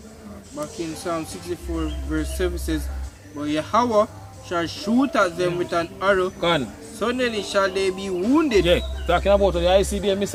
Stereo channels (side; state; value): both; identical; correlation 1.00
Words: Back in Psalm 64 verse 7 says, but Yahweh shall shoot at them with an arrow. Gone. Suddenly shall they be wounded. Yeah, talking about the ICBM